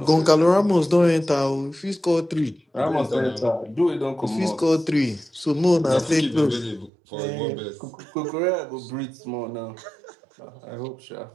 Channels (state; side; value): drops out; left; at 6.9 s